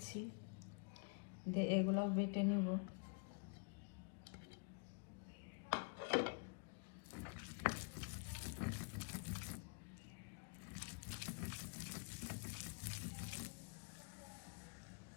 দিয়ে এগুলাও বেটে নেব।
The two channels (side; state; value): right; quieter; 38.1 dB